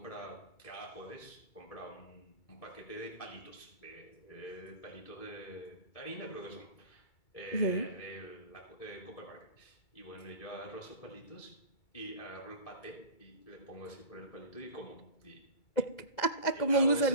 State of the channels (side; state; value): right; late; 2.3 ms